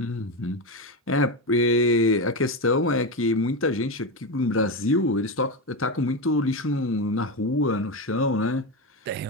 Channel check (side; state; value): both; normal; correlation 0.14